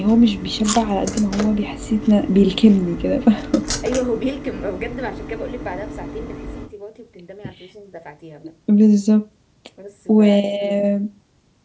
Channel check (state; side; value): identical; both; correlation 1.00